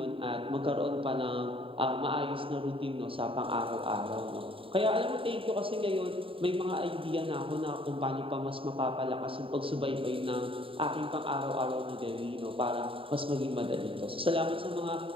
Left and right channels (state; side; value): late; left; 0.26 ms